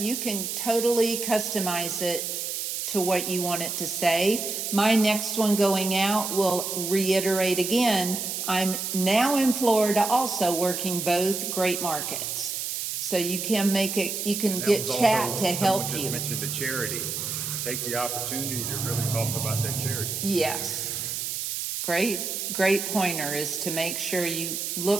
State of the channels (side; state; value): right; noise; hiss, 3 dB below the sound